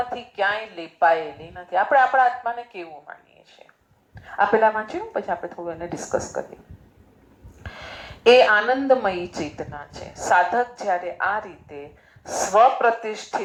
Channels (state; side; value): identical; both; correlation 1.00